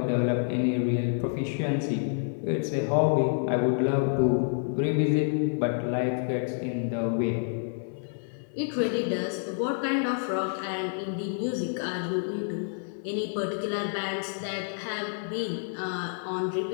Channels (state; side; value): silent; right; 59 dB below the other